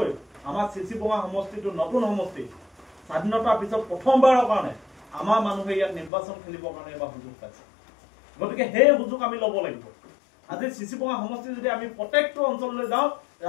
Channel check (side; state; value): right; drops out; at 6.1 s